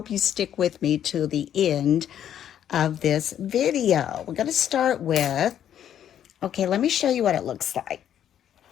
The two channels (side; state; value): right; quieter; 10.1 dB